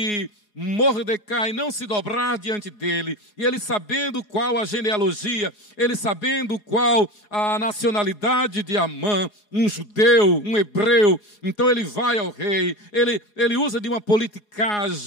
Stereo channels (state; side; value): late; right; 4.8 ms